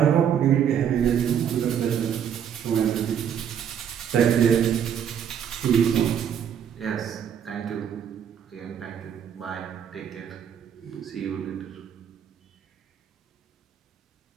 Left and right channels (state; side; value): quieter; left; 8.6 dB